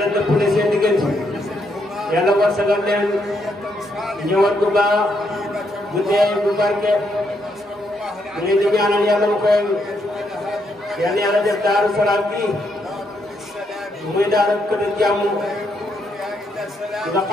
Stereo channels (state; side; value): normal; both; correlation 0.77